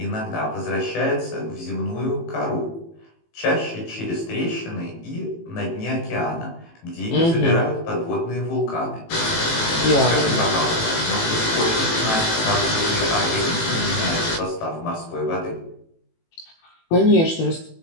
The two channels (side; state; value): right; late; 18 ms